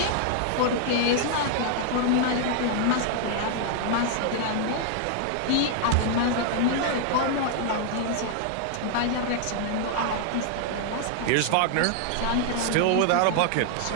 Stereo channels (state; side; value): different; both; correlation 0.00